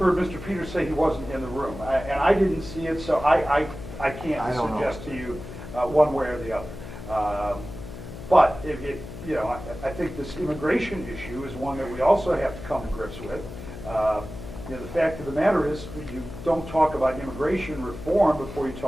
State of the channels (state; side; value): noise; left; hum, 11 dB below the sound